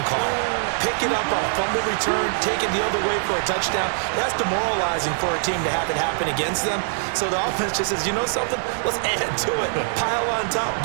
call. Pick it up on a fumble return, take it the other way for a touchdown. That's demoralizing for a team to have it happen against them. So the offense just says, you know something? Let's add to it. Pile on top,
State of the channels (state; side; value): silent; left; digital silence